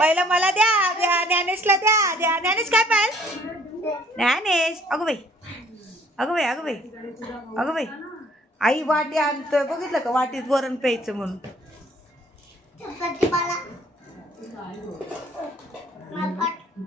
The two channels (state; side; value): normal; both; correlation 0.58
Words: मला द्या, द्या ज्ञानेशला द्या, द्या. ज्ञानेश काय पाहिजे? ज्ञानेश. अगं बाई, अगं बाई, अगं बाई, अगं बाई. आई वाटी आणतोय बघितलं का? वाटीत वरण प्यायचं म्हणून.